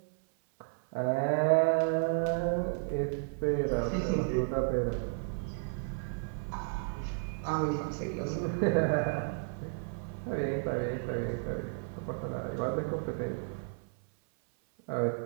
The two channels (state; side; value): silent; left; 56 dB below the other